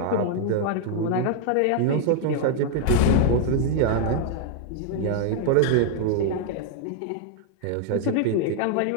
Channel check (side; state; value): both; different; correlation 0.00